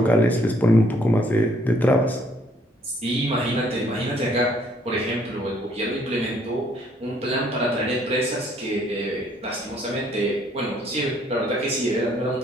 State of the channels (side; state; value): both; normal; correlation 0.65